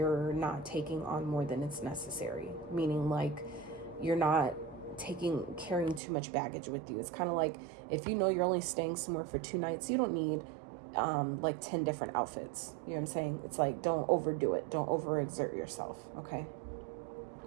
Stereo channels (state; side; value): drops out; left; at 6.0 s